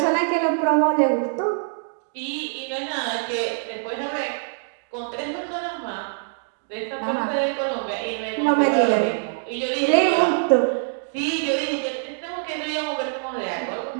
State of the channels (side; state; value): left; silent; digital silence